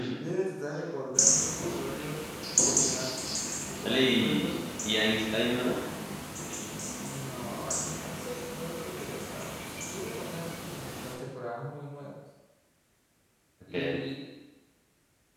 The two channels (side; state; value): both; identical; correlation 1.00